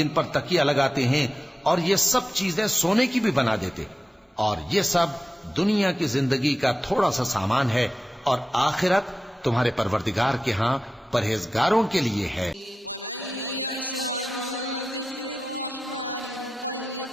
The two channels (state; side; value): normal; both; correlation 0.93